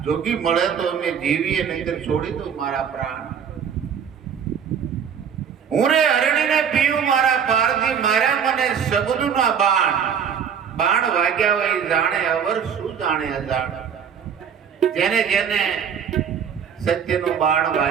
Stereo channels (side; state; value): left; quieter; 7.6 dB